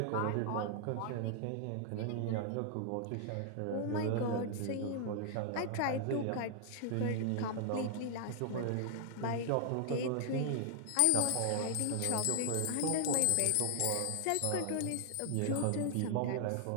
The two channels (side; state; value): both; different; correlation 0.00